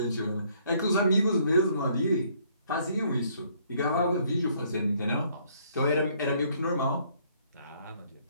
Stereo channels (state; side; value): inverted; both; correlation -0.65